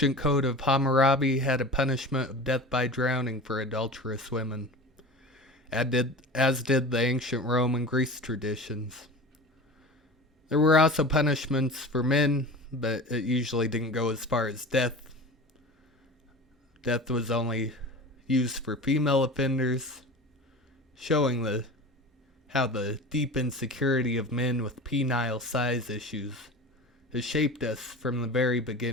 code of Hammurabi had a punishment of death by drowning for adulterous women, as did the ancient Rome and Greece traditions. There were also punishments for men, but it usually didn't go as far as death. Death was only used for female offenders, showing how the deep insecurity of men with penile size issues has shaped us from the very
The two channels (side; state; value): both; normal; correlation 0.34